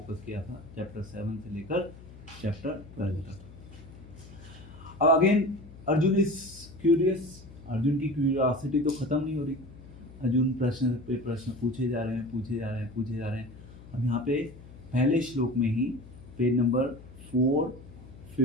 किया था, चैप्टर 7 से लेकर चैप्टर 12 तक। अब again Arjun is curious, Arjun की क्यूरियोसिटी तो ख़त्म नहीं हो रही। अर्जुन प्रश्न पे प्रश्न पूछे जा रहे हैं। अब यहाँ पे पहले श्लोक में ही पेज नंबर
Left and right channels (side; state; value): left; noise; hum, 18 dB below the sound